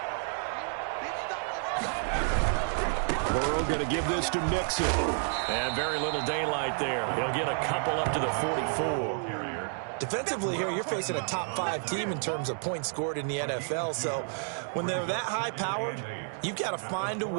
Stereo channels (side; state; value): left; silent; 57 dB below the other